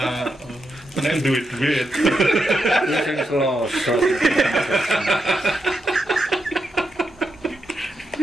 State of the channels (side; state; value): both; normal; correlation 0.85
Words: Nek duit. Sing selosot.